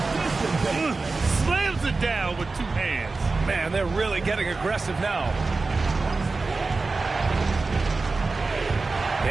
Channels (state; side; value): quieter; left; 3.8 dB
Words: Slams it down with 2 hands. Man, they're really getting aggressive now.